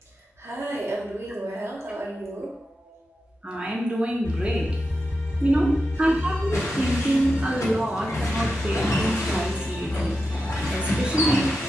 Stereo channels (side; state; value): both; normal; correlation 0.89